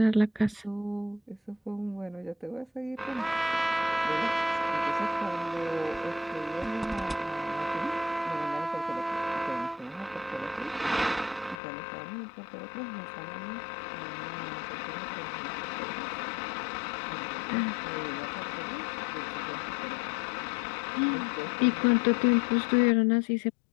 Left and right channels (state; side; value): drops out; right; at 11.6 s